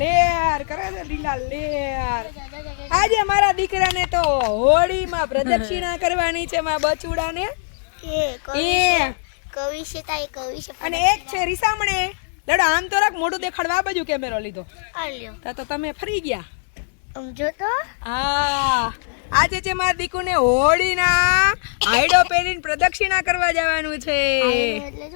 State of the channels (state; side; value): silent; right; digital silence